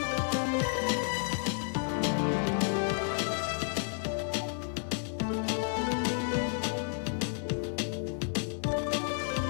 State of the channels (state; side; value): silent; right; 56 dB below the other